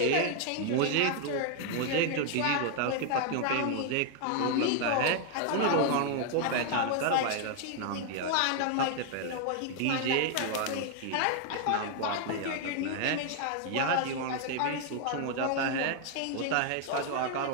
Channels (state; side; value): different; both; correlation 0.00